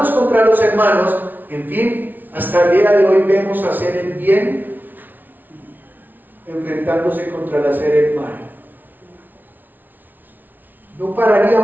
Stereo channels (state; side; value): late; left; 0.085 ms